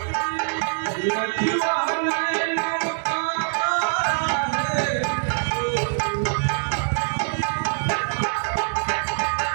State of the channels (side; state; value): left; silent; 63 dB below the other